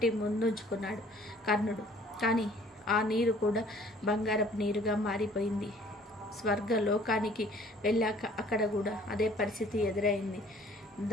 ముందుంచుకున్నాడు కర్ణుడు. కానీ ఆ నీరు కూడా బంగారపు నీరుగా మారిపోయింది. స్వర్గలోకానికి వెళ్ళాక అక్కడ కూడా అదే పరిస్థితి ఎదురైంది.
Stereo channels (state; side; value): normal; both; correlation 0.55